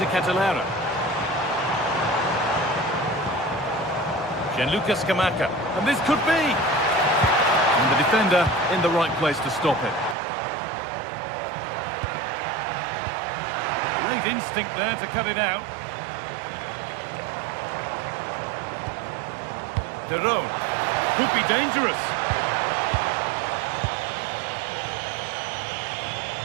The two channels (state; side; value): drops out; left; at 10.2 s